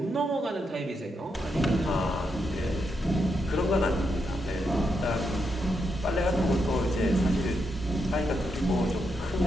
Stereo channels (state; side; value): normal; both; correlation 0.82